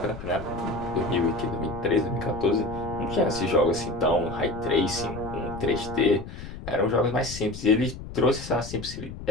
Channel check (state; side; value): noise; left; rumble, 11 dB below the sound